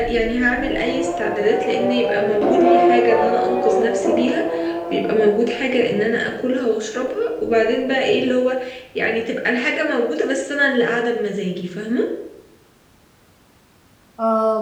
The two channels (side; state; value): both; identical; correlation 1.00